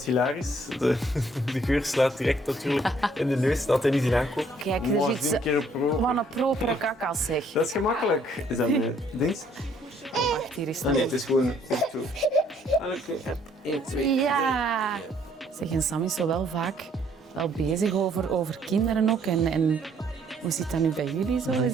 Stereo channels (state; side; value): normal; both; correlation 0.64